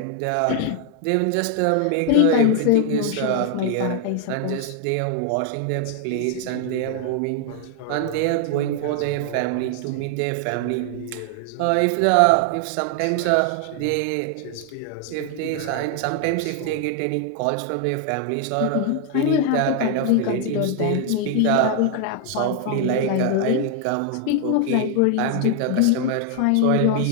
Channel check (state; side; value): different; both; correlation 0.00